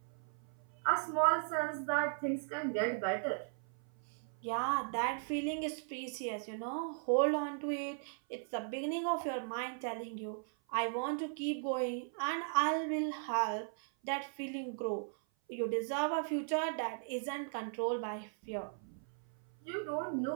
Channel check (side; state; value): left; silent; 53 dB below the other